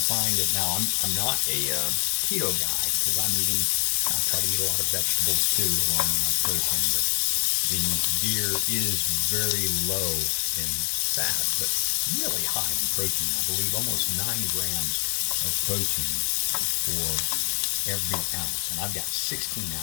find it now. I'm not a keto guy because I try to eat a lot of vegetables too, along with my protein. But the deer is very low in fat, but really high in protein. I believe almost 9 grams of protein for every ounce, and I've got 16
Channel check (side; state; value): right; silent; digital silence